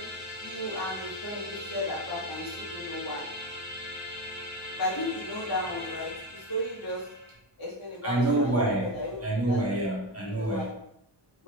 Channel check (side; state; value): both; normal; correlation 0.17